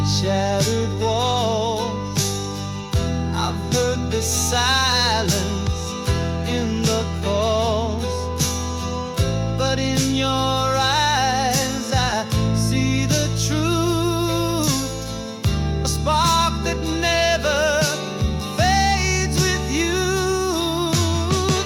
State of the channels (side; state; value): both; identical; correlation 1.00